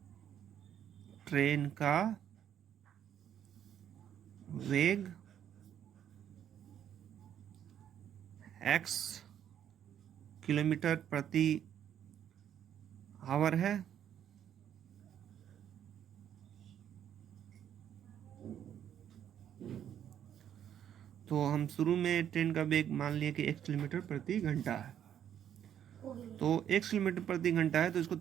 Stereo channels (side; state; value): left; quieter; 9.8 dB